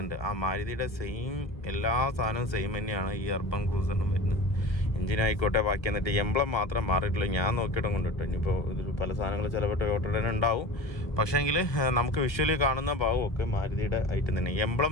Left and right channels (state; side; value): late; right; 1.2 ms